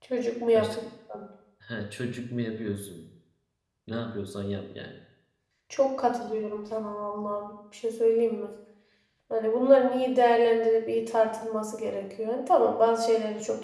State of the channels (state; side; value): identical; both; correlation 1.00